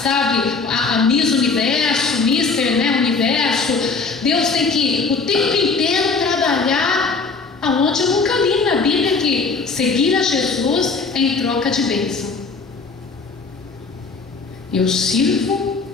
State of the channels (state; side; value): quieter; right; 4.4 dB